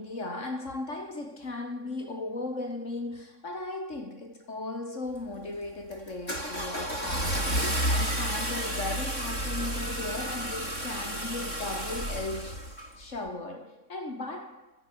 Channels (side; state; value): right; late; 3.6 ms